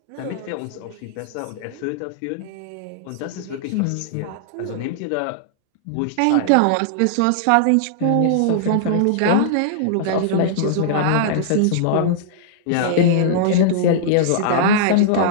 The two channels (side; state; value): both; different; correlation -0.01